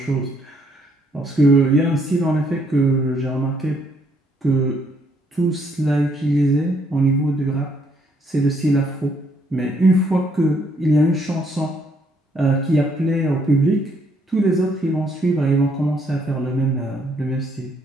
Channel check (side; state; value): both; normal; correlation 0.70